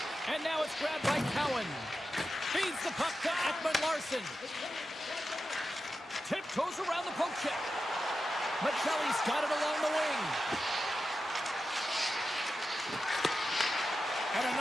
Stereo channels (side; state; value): both; normal; correlation 0.91